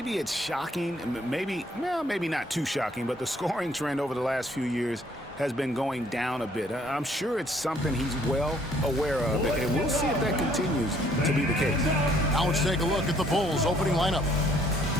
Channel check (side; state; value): both; normal; correlation 0.63